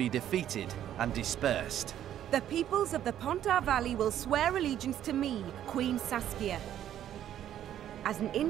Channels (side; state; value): left; quieter; 11.1 dB